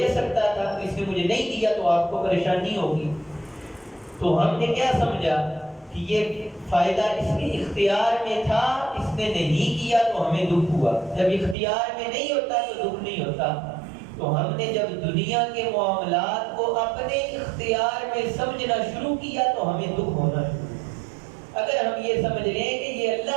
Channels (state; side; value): drops out; left; at 11.6 s